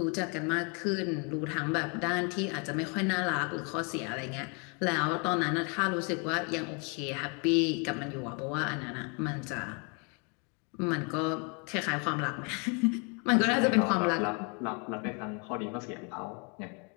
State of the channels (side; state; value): right; quieter; 34.5 dB